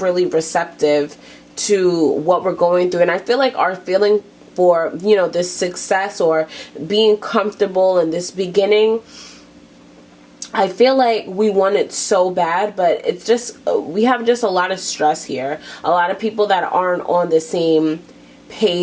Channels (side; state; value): both; identical; correlation 1.00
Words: really receptive to what we're going through. And I feel like our feeling for, you know, this success or being comfortable in this beginning, I feel like we want it so bad, but it's just, we have just a lot of stress here. A lot of people that aren't on the same